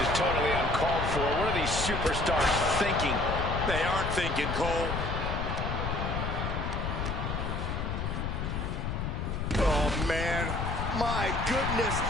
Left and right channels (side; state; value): left; noise; rumble, 2 dB below the sound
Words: totally uncalled for. What are these superstars thinking? They aren't thinking, Cole. Oh man, my goodness,